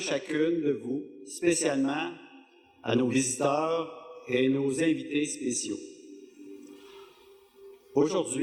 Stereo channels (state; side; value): identical; both; correlation 1.00